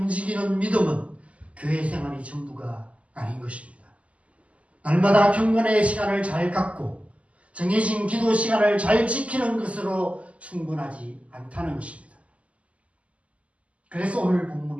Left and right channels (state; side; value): late; left; 0.065 ms